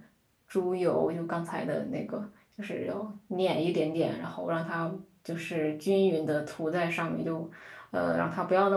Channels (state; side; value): identical; both; correlation 1.00